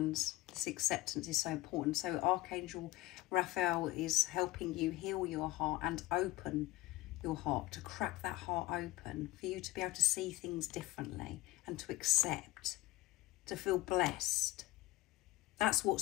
this acceptance is so important. So Archangel Raphael is helping you heal your heart and open your heart, to crack that heart open, for you to be able to see things differently and to accept, to feel blessed. That's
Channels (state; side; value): quieter; right; 18.1 dB